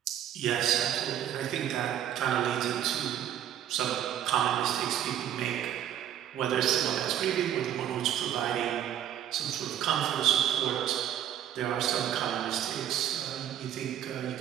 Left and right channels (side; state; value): left; quieter; 10.5 dB